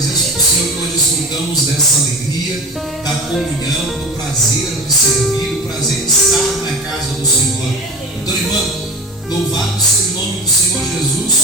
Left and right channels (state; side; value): normal; both; correlation 0.31